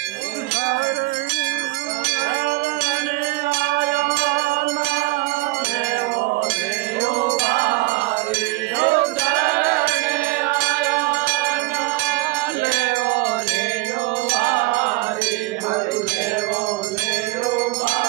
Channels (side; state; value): left; quieter; 21.1 dB